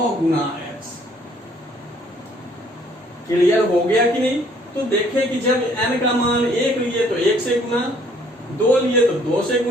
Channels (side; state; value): both; normal; correlation 0.61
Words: गुना x। क्लियर हो गया कि नहीं? तो देखें कि जब n का मान 1 लिए तो 1 से गुना, 2 लिए तो 2 से